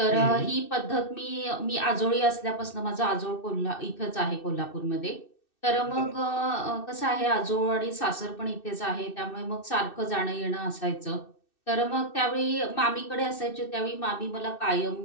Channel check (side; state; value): right; late; 2.6 ms